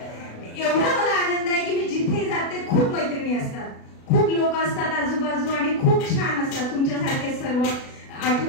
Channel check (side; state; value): right; late; 37 ms